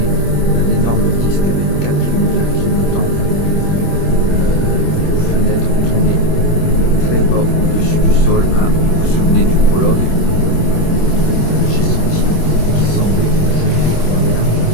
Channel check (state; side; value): late; right; 26 ms